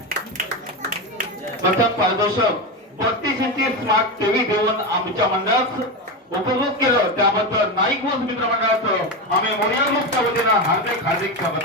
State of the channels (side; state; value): both; normal; correlation 0.16